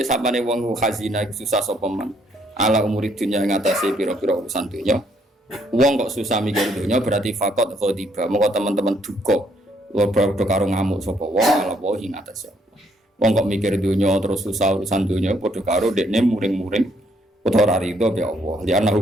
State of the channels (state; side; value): normal; both; correlation 0.69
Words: wong khazina susah sapa man. Ala umuri dunya ngatasi pira-pira urusan dunya. Wong kok susah mikir dunya berarti fakot khodiba. Moko teman-teman duka. Padha karo ngamuk sapa wong ala wae ngatasi. Wong kok mikir dunya terus susah urusan dunya padha karo dekne muring-muring utawa rido ya Allah. Li